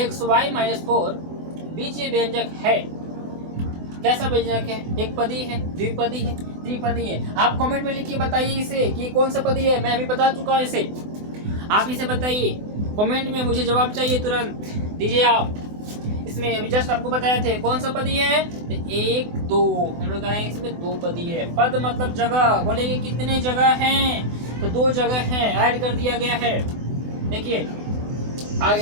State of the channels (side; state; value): left; late; 24 ms